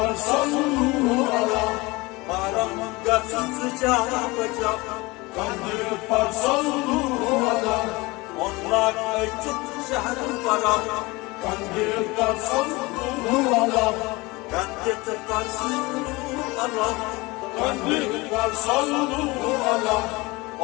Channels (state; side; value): quieter; right; 23.3 dB